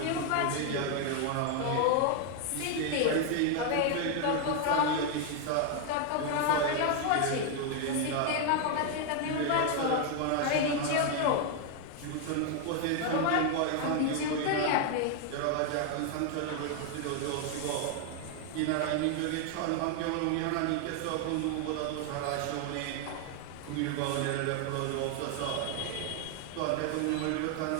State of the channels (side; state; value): both; different; correlation 0.00